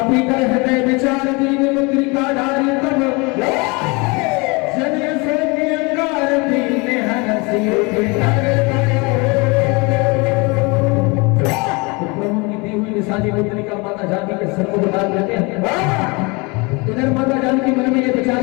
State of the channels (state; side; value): quieter; right; 27.9 dB